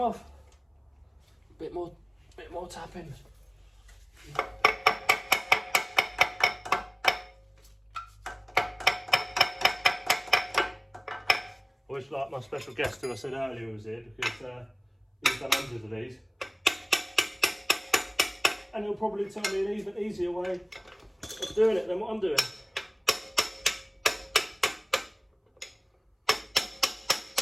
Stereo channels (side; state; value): both; identical; correlation 1.00